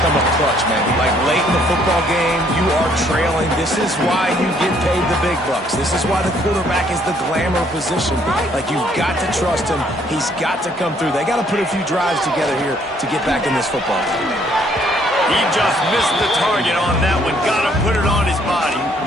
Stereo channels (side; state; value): both; normal; correlation 0.65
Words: come up clutch, man. Like, late in the football game, you are trailing. This is why you get paid the big bucks. This is why the quarterback is the glamour position. Like, you've got to trust him. He's got to come through. They got to put a few drives together here to get back in this football game. He just missed the target on that one. Got to put it on his body.